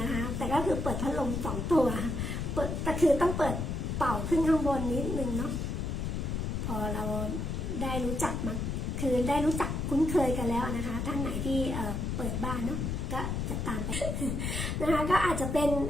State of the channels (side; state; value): left; noise; rumble, 2 dB below the sound